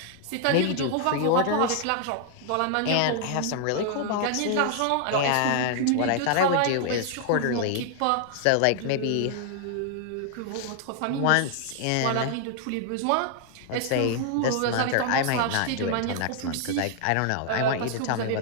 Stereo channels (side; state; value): both; different; correlation 0.00